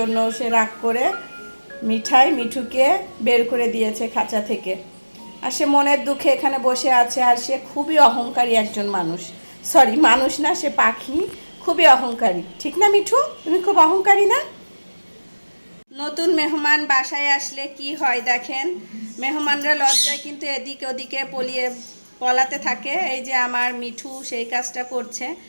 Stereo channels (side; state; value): both; inverted; correlation -1.00